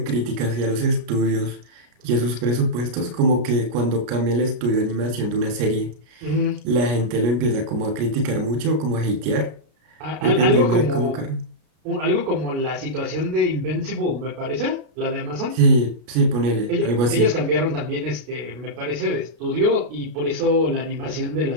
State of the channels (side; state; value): left; late; 33 ms